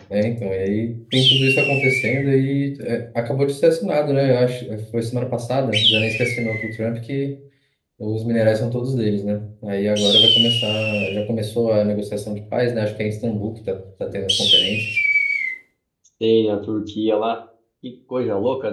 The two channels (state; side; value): identical; both; correlation 1.00